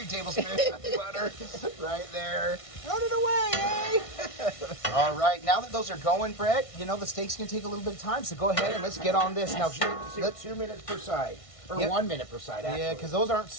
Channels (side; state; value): right; late; 1.5 ms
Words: tablespoons of butter right there. Run it away, eh? All right. Now that those are going, Brett, you know, the steak's going to take a little bit of time, so go ahead and let's get on this. Now, Let's 2 minutes per side. Or 1 minute per side, actually. Yeah, because those aren't